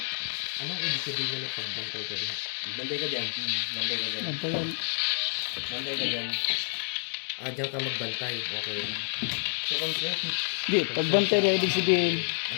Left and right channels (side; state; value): right; silent; digital silence